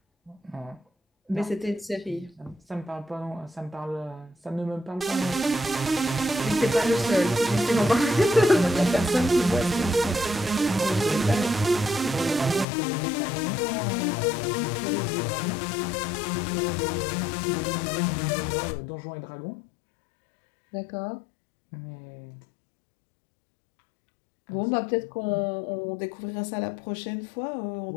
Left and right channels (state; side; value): drops out; right; at 12.7 s